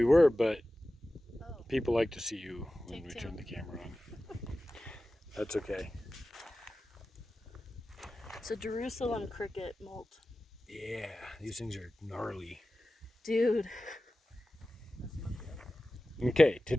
were, but Oh, people like to see you when take we two. turn the camera on. That's okay. It's a Jerusalem cricket molt. Yeah, these things are gnarly. Dude. Okay,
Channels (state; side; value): normal; both; correlation 0.95